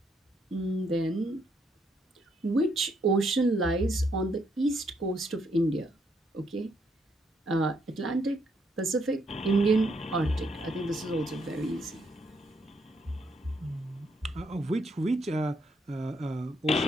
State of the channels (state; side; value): normal; both; correlation 0.74